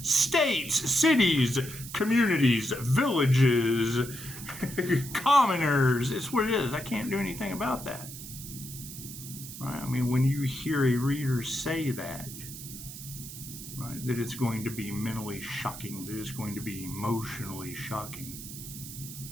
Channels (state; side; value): noise; right; hiss, 12 dB below the sound